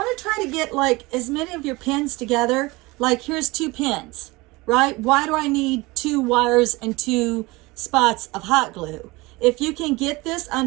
to try to get like as many of your pins together. Like here's 2 pins, right? Why do I need 2 wires and 2 spots of hot glue? If you can get this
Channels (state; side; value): quieter; left; 22.7 dB